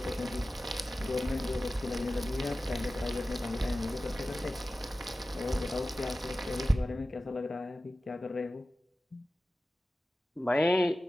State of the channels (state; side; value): normal; both; correlation 0.95